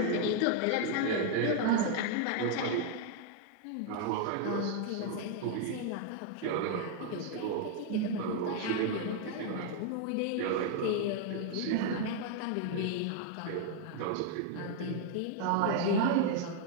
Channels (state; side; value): different; both; correlation 0.00